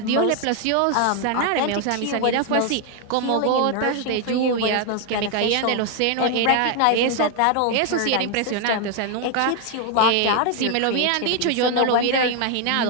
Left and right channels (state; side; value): different; both; correlation 0.01